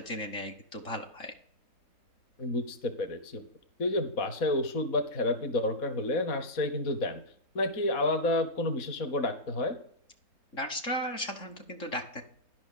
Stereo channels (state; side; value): late; right; 3.7 ms